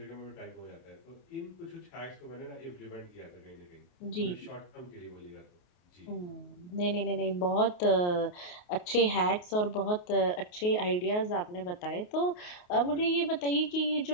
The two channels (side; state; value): right; late; 28 ms